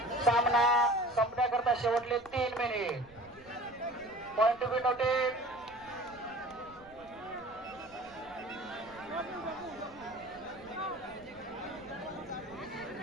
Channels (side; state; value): right; noise; rumble, 25 dB below the sound